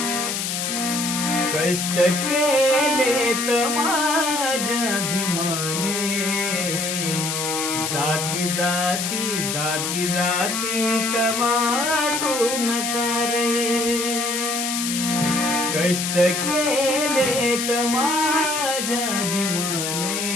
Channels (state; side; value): noise; left; hiss, 2 dB below the sound